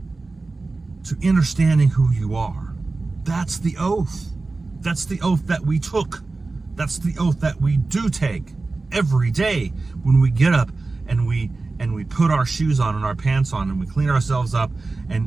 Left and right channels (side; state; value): left; quieter; 3.6 dB